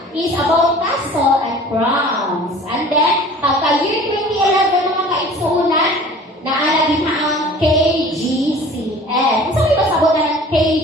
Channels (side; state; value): both; normal; correlation 0.45